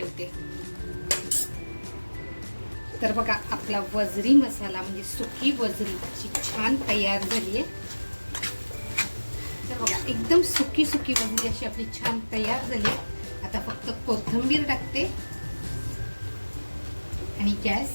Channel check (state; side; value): inverted; both; correlation -1.00